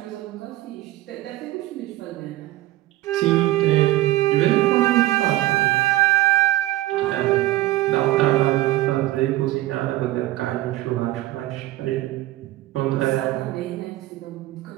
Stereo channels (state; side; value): quieter; left; 16.8 dB